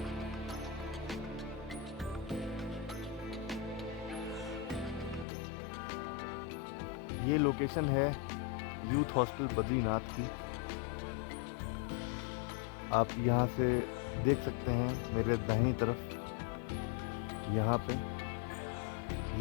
ये लोकेशन है यूथ हॉस्टल बद्रीनाथ की। आप यहाँ से देख सकते हैं मेरे दाहिनी तरफ, यहाँ पे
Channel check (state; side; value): drops out; right; at 5.2 s